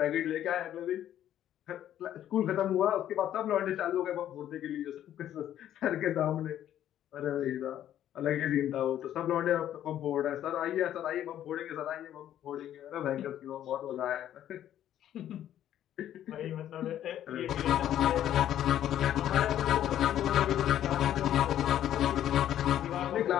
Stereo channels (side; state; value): right; quieter; 11.4 dB